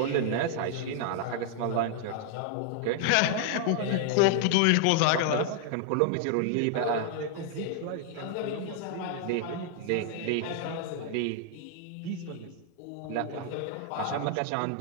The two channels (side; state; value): both; different; correlation -0.01